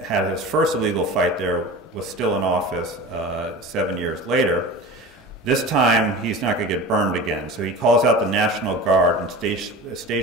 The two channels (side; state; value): both; normal; correlation 0.34